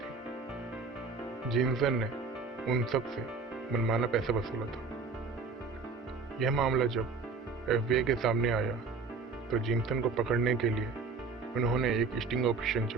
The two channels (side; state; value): left; quieter; 4.6 dB